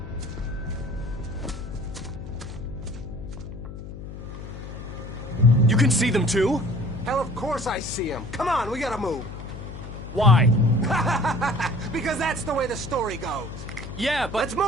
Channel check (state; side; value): noise; left; hum, 11 dB below the sound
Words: You can see them too? Hell, of course I see them. Come on, we gotta move. Why? Because that's the way the story goes. Yeah, but... Let's